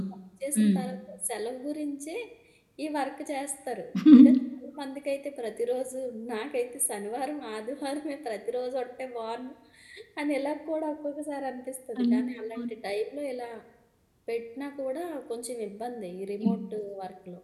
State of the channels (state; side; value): identical; both; correlation 1.00